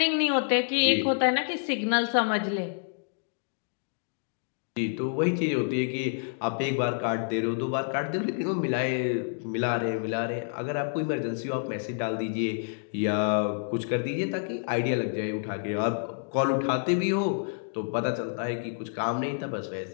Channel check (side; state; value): right; silent; digital silence